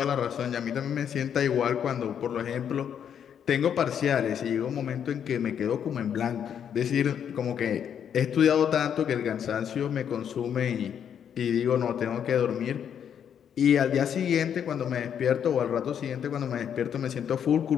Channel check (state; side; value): quieter; right; 8.5 dB